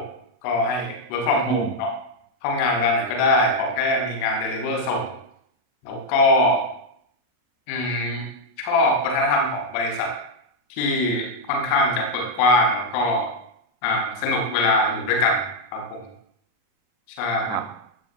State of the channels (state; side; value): late; right; 40 ms